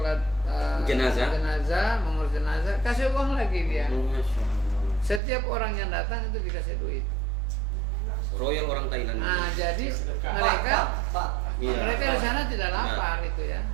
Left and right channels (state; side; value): drops out; left; at 5.2 s